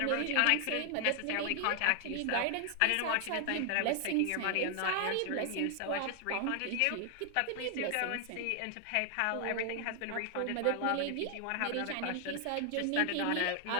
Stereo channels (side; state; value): both; different; correlation 0.00